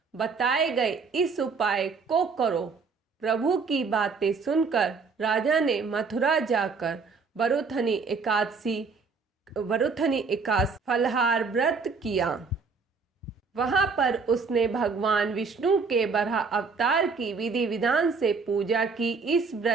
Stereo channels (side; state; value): left; quieter; 4.8 dB